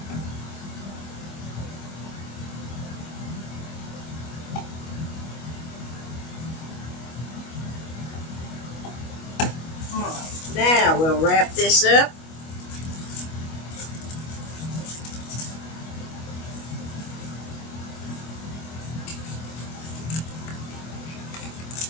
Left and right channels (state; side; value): late; right; 25 ms